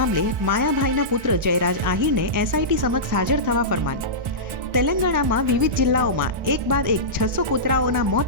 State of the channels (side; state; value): left; late; 1.4 ms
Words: માયાભાઈના પુત્ર જયરાજ આહિરને એસઆઈટી સમક્ષ હાજર થવા ફરમાન. તેલંગાણામાં વિવિધ જિલ્લાઓમાં એક બાદ એક 600 કૂતરાઓના